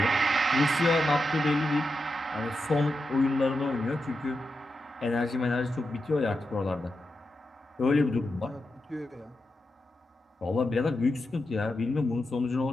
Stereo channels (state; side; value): normal; both; correlation 0.88